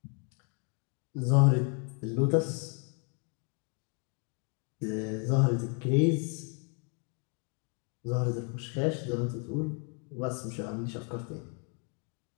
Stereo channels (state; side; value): quieter; right; 37.6 dB